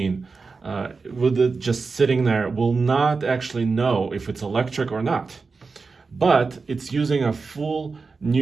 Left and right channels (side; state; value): left; quieter; 4.5 dB